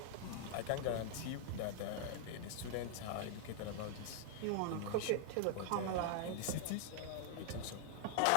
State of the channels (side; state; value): both; different; correlation 0.00